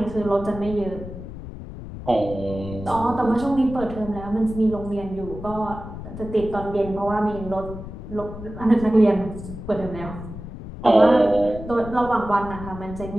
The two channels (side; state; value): left; noise; rumble, 11 dB below the sound